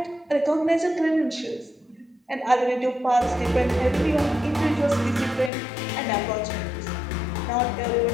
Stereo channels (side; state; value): right; drops out; at 5.5 s